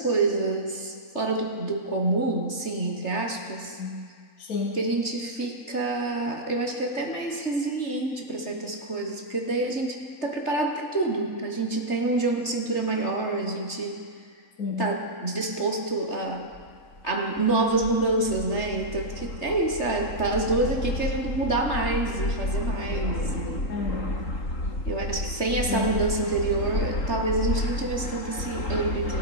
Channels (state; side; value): late; right; 3.3 ms